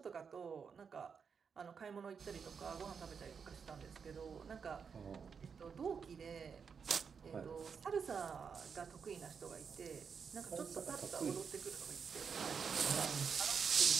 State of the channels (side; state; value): left; quieter; 6.2 dB